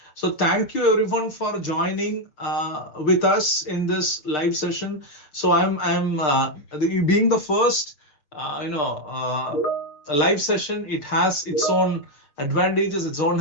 So thank you everyone for joining with us in this live session. So I'm being the first, live session. It has its own advantages,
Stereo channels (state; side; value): late; right; 6.7 ms